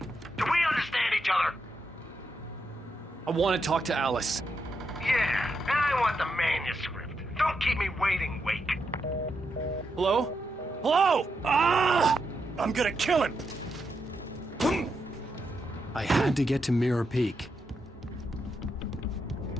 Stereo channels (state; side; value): normal; both; correlation 0.83